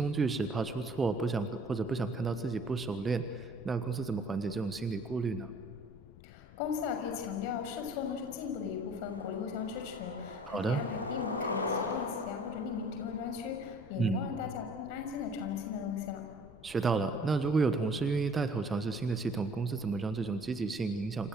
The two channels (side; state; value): left; noise; rumble, 19 dB below the sound